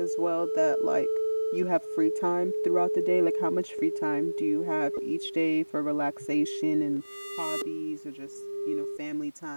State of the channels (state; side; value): inverted; both; correlation -1.00